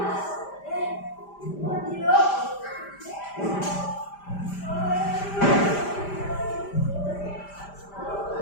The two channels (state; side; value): late; right; 5.0 ms